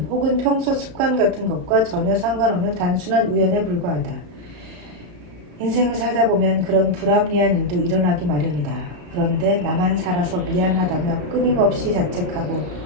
혹은 평소 습관 같은 것과 전혀 상관없는 단순한 우연에 불과하다. 인생을 살다 보면 그런 불합리한 일도 일어나기 마련이다. 그런데 나만 살아서 미안하다며 끊임없이 자책하고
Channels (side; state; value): left; late; 34 ms